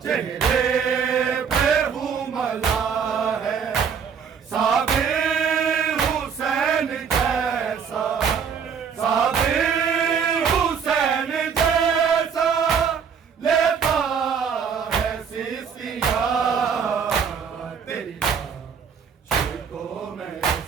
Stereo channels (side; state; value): left; quieter; 6.8 dB